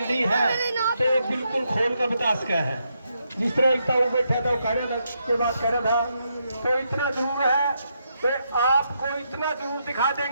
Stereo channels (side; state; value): both; inverted; correlation -0.80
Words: है, तो बिल्कुल खोल कर बता सका है। जिस तरह एक वो बैठा था, वो कह रहा था के बाद कह रहा था, तो इतना जरूर है तो आपको इतना जरूर दिखा